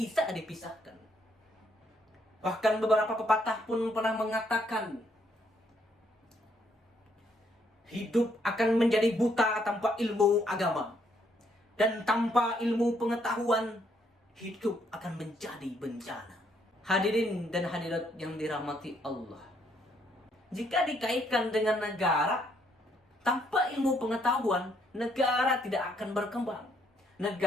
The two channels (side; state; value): both; normal; correlation 0.71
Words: dipisahkan. Bahkan beberapa pepatah pun pernah mengatakan, hidup akan menjadi buta tanpa ilmu agama. Dan tanpa ilmu pengetahuan, hidup akan menjadi bencana. Hadirin dan hadirat yang dirahmati Allah. Jika dikaitkan dengan negara, tanpa ilmu pengetahuan, negara tidak akan berkembang.